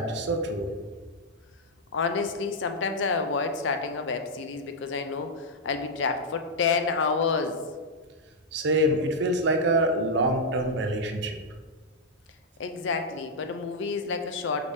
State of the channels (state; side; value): normal; both; correlation -0.04